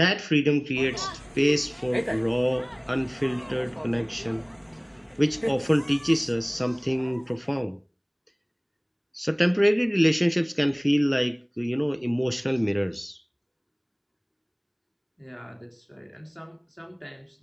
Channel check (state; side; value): identical; both; correlation 1.00